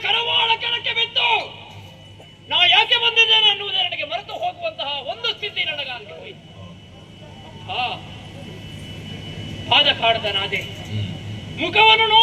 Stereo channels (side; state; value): both; identical; correlation 1.00